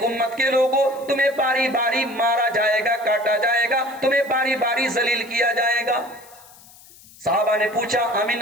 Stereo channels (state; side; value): noise; left; hiss, 23 dB below the sound